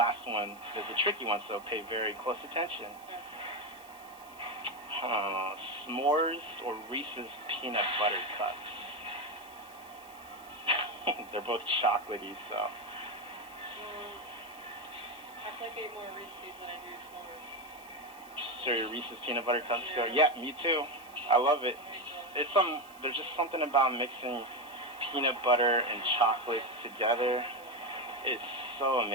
one is a tricky one, so pay very close attention. S'mores or Reese's peanut butter cups? They're both chocolatey, so. I think I eat more Reese's than I do s'mores. So your Reese's peanut butter cups go? Yeah, me too. I love it. There's just something about mixing peanut butter and chocolate together. It's so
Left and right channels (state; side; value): noise; right; hiss, 23 dB below the sound